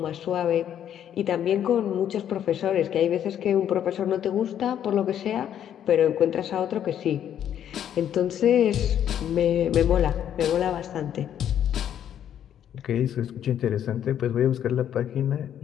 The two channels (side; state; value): right; quieter; 10.0 dB